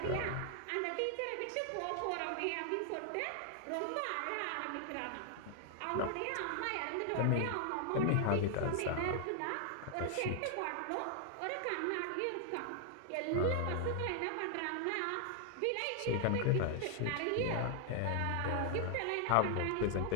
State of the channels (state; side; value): different; both; correlation 0.00